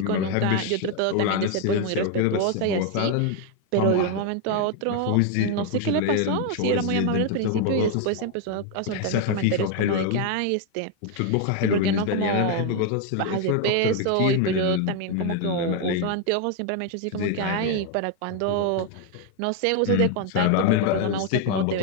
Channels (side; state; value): both; different; correlation 0.01